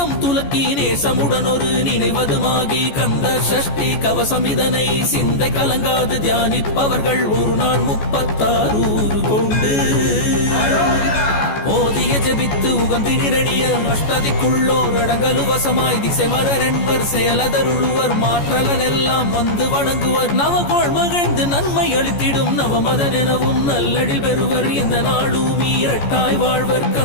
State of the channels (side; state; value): right; late; 14 ms